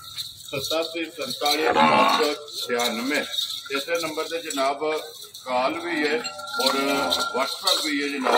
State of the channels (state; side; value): identical; both; correlation 1.00